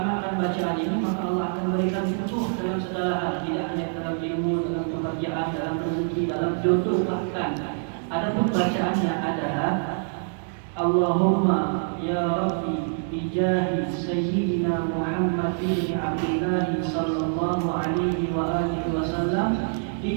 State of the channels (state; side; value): silent; left; 61 dB below the other